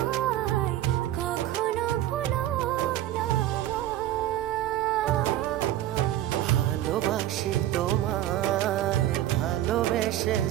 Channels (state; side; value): quieter; left; 13.3 dB